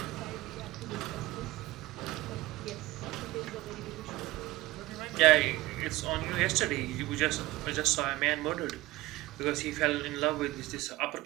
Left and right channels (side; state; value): left; quieter; 18.8 dB